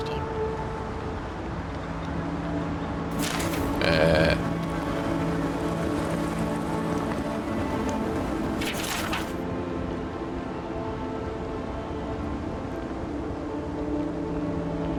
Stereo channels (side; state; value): both; identical; correlation 1.00